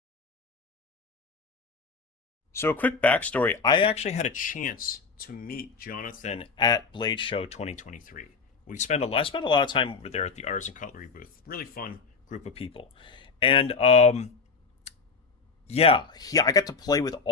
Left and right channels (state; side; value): quieter; right; 4.9 dB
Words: So a quick backstory, I actually had a chance to meet Jonathan at Blade Show 2023. I spent a lot of time over there at the Artisan Cutlery booth. Really fun group of people. And yeah, I got to play with